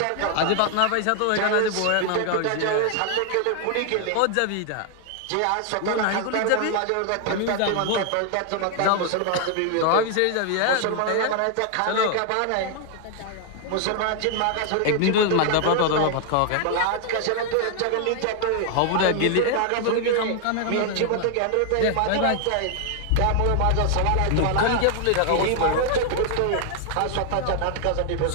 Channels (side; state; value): both; different; correlation 0.00